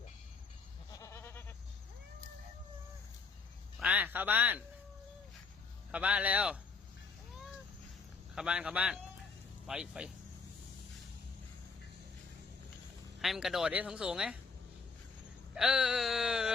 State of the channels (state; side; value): quieter; right; 4.8 dB